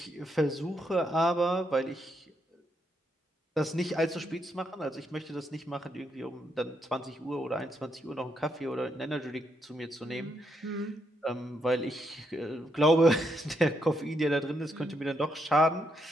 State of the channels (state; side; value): normal; both; correlation 0.78